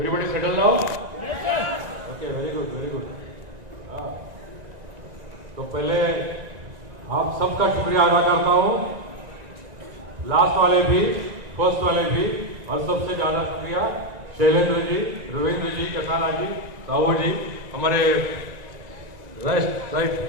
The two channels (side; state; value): left; late; 1.9 ms